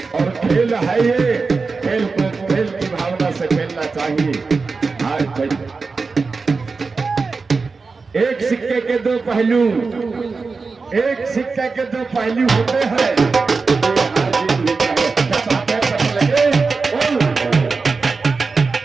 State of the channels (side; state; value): left; quieter; 4.4 dB